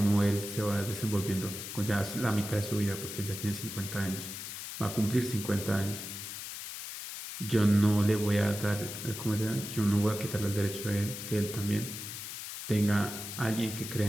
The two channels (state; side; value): noise; left; hiss, 8 dB below the sound